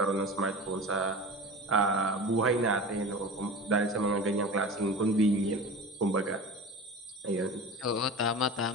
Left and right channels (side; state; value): both; normal; correlation 0.33